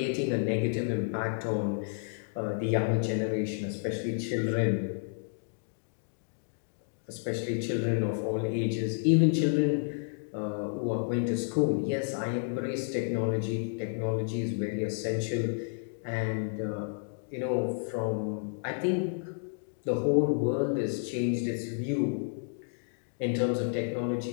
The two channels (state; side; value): silent; right; digital silence